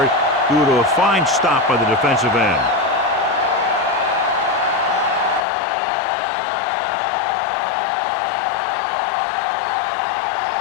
due to a fine stop by the defensive end.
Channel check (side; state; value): right; drops out; at 5.5 s